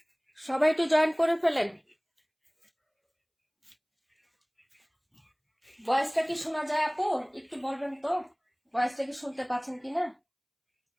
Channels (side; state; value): both; identical; correlation 1.00